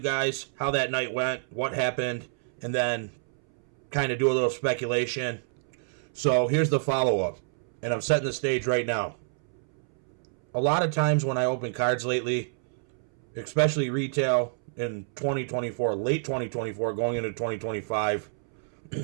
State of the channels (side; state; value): left; silent; 59 dB below the other